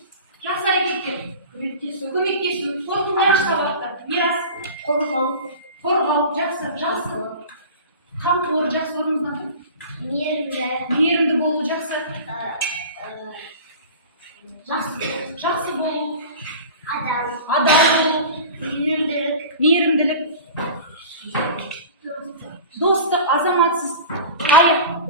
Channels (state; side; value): inverted; both; correlation -0.37